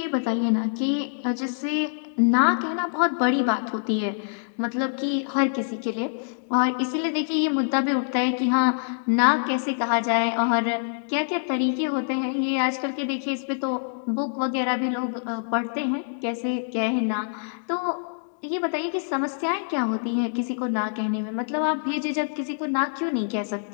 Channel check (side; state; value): right; silent; digital silence